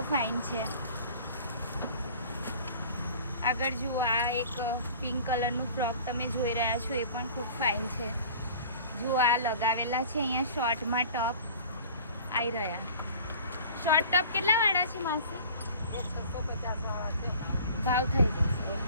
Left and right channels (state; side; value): inverted; both; correlation -0.45